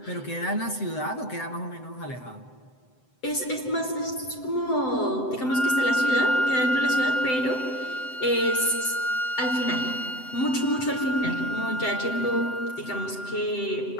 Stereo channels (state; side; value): late; right; 7.8 ms